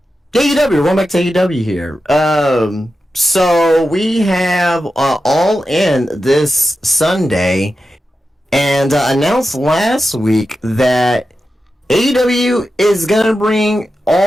AEW. We're going back to AEW here. So we have All In this Sunday, and announced last week that AEW is gonna bring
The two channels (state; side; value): normal; both; correlation 0.91